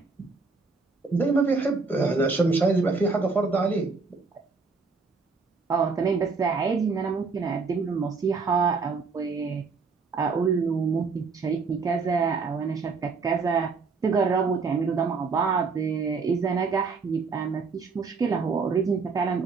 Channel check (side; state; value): left; quieter; 4.6 dB